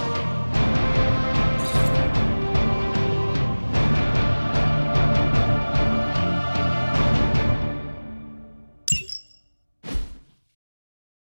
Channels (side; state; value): both; inverted; correlation -1.00